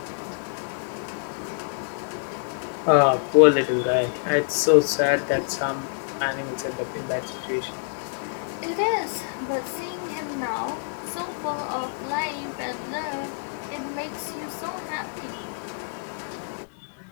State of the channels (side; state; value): right; silent; digital silence